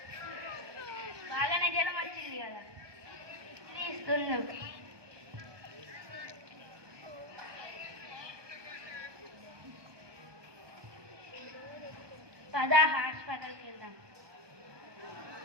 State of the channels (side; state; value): left; late; 1.2 ms